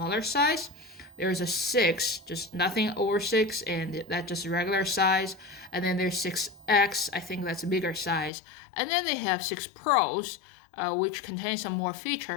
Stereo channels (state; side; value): drops out; right; at 8.3 s